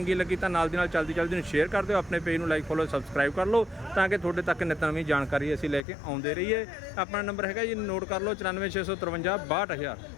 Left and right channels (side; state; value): right; drops out; at 5.9 s